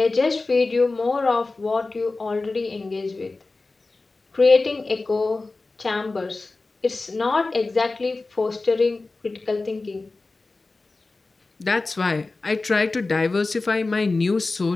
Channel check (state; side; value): quieter; right; 3.5 dB